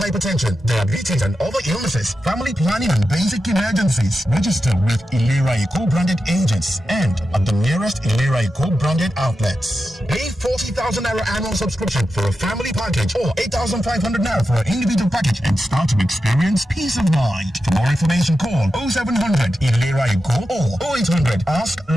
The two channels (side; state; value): both; normal; correlation 0.90